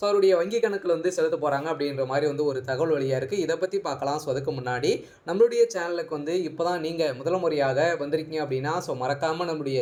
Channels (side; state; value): both; identical; correlation 1.00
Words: அவருடைய வங்கி கணக்கில் செலுத்த போகிறாங்க அப்படின்ற மாதிரி ஒரு தகவல் வழியாக இருக்குது. இதை பற்றி பார்க்கலாம். ஸோ அதுக்கு முன்னாடி நம்மளுடைய சேனலுக்கு இப்போ தான் நீங்கள் முதல் முறையாக வந்திருக்கீங்க அப்படின்னா ஸோ மறக்காமல் நம்மளுடைய